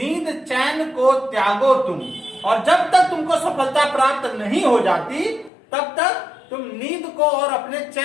चैन को त्यागो तुम, और जब तक तुमको सफलता प्राप्त नहीं हो जाती तब तक तुम नींद को और अपने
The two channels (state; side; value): drops out; right; at 5.5 s